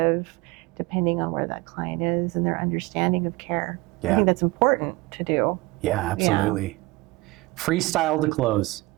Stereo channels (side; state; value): left; quieter; 22.3 dB